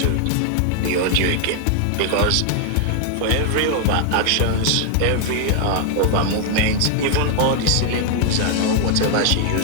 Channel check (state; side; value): different; both; correlation 0.00